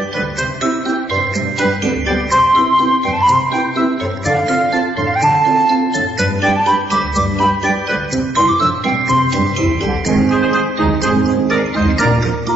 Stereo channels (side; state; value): both; normal; correlation 0.79